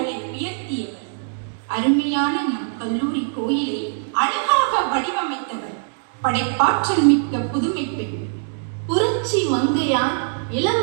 உயர்த்தியவர். அருமையான நம் கல்லூரி கோயிலை அழகாக வடிவமைத்தவர் படைப்பாற்றல் மிக்க புதுமை பெண். புரட்சி மங்கையார்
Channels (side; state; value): left; silent; digital silence